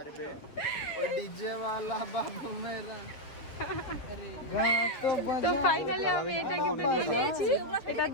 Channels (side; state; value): right; late; 6.9 ms